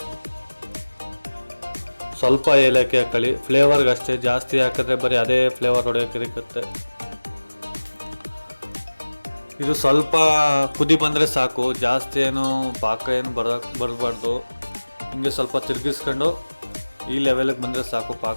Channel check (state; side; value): inverted; both; correlation -1.00